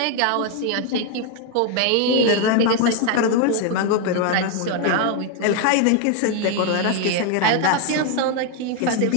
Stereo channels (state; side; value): different; both; correlation 0.01